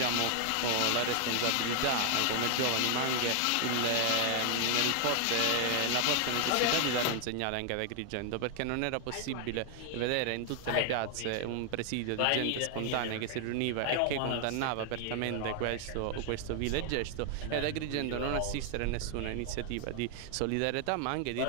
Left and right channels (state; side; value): different; both; correlation 0.00